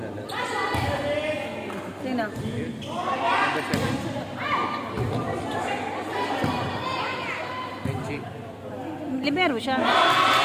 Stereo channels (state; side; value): identical; both; correlation 1.00